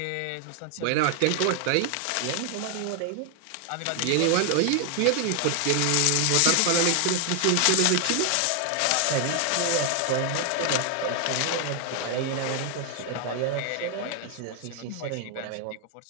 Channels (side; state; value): both; different; correlation 0.00